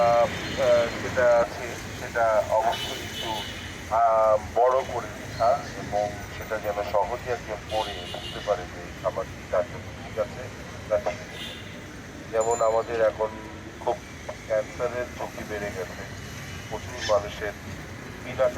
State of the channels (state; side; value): identical; both; correlation 1.00